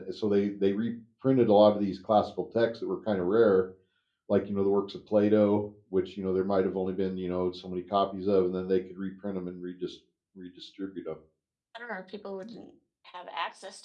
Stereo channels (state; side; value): identical; both; correlation 1.00